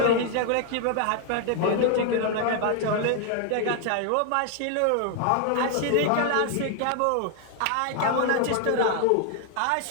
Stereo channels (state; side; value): different; both; correlation 0.00